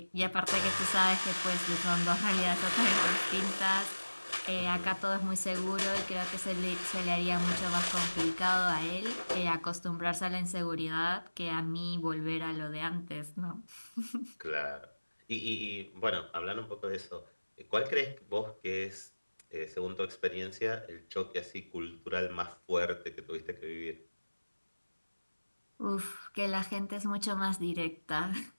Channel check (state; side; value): inverted; both; correlation -1.00